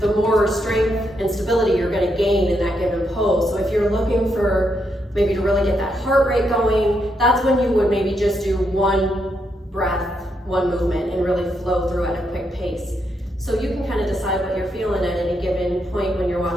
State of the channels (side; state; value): both; normal; correlation 0.80